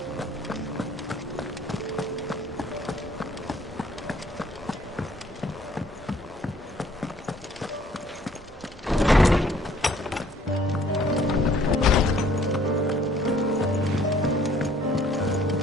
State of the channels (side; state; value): both; normal; correlation 0.59